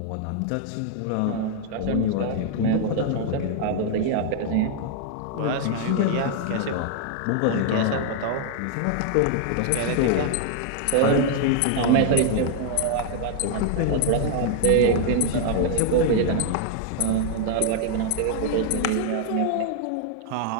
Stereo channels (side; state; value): both; different; correlation 0.00